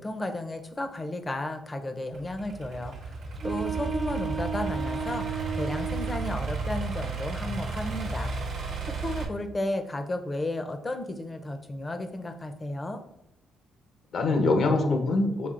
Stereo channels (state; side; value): normal; both; correlation 0.78